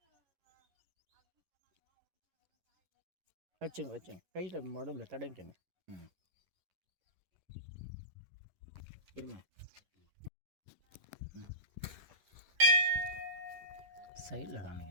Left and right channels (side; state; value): left; late; 11 ms